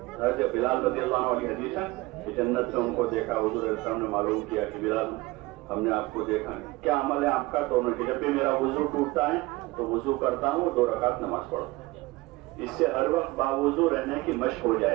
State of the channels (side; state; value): left; quieter; 21.2 dB